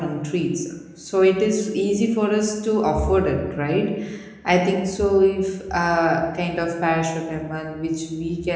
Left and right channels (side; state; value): both; identical; correlation 1.00